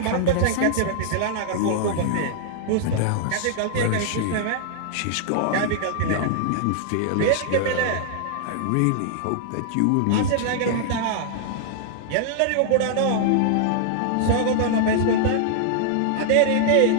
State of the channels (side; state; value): both; different; correlation -0.01